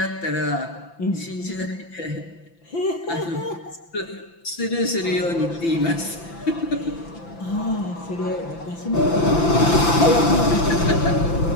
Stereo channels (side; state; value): right; late; 5.9 ms